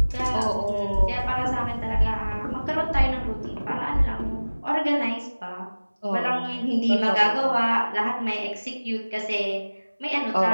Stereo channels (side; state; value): both; inverted; correlation -1.00